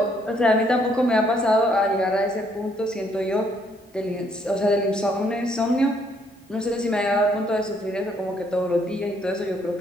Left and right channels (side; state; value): both; normal; correlation 0.69